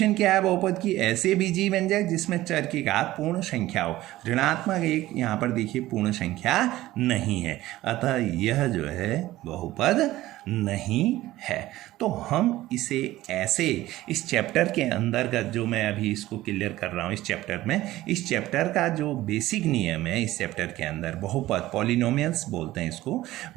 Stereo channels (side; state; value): left; quieter; 16.2 dB